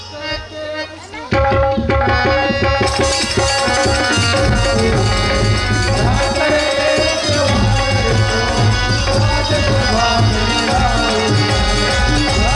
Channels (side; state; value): both; identical; correlation 1.00